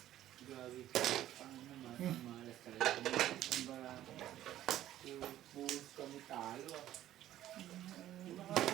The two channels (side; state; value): left; quieter; 13.0 dB